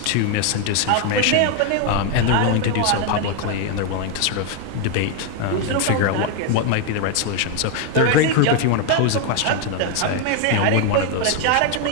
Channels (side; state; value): both; different; correlation 0.01